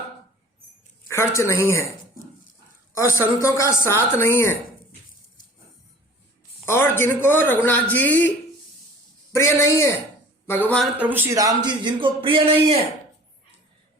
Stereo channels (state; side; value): normal; both; correlation 0.46